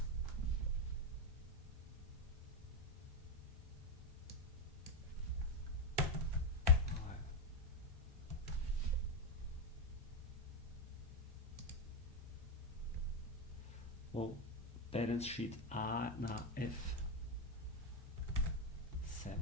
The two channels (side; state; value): both; normal; correlation 0.06